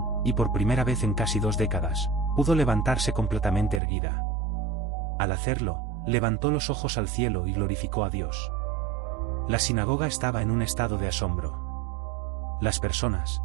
y por primera vez en casi 2 décadas, pudo levantarse completamente erguida. Al hacerlo, levantó los ojos al cielo y glorificó a Dios. La sinagoga estaba en un estado de asombro. Las personas,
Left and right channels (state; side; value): drops out; left; at 3.8 s